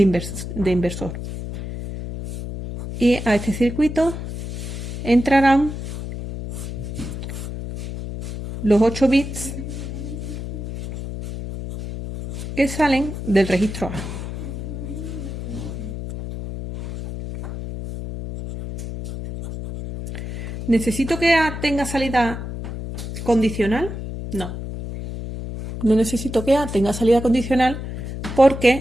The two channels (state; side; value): noise; left; hum, 7 dB below the sound